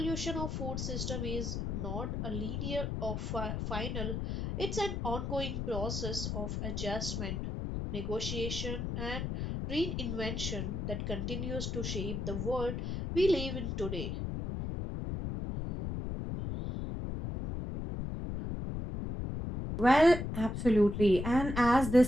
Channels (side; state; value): left; noise; rumble, 3 dB below the sound